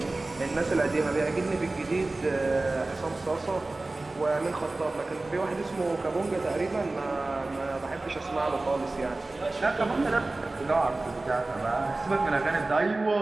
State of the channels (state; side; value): quieter; left; 3.1 dB